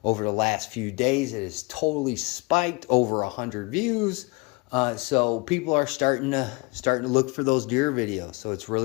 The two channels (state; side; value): quieter; right; 27.6 dB